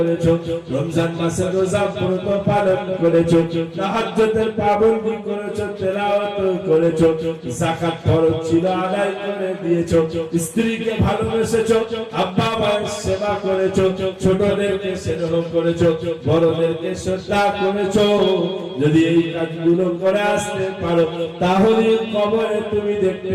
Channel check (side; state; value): both; identical; correlation 1.00